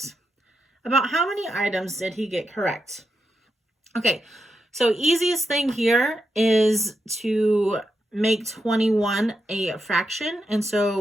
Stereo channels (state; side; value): normal; both; correlation 0.85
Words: About how many items did he get correct? Okay, so easiest thing here is to make 21 a fraction. And so